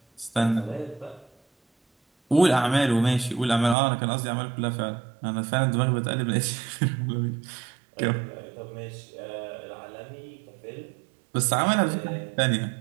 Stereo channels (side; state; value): left; drops out; at 3.8 s